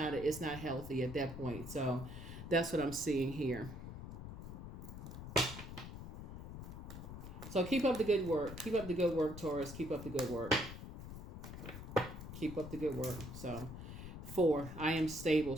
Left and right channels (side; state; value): left; noise; rumble, 9 dB below the sound